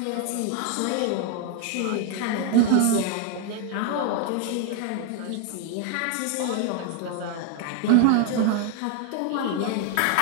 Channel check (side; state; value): both; different; correlation 0.00